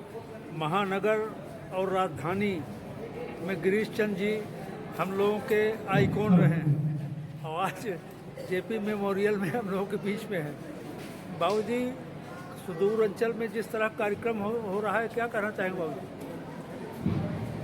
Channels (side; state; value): both; identical; correlation 1.00